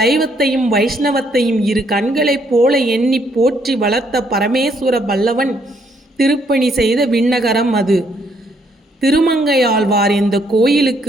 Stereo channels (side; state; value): both; normal; correlation 0.70